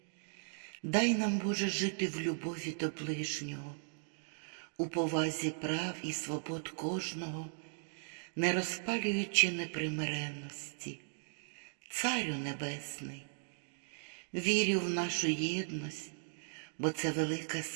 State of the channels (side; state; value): left; silent; digital silence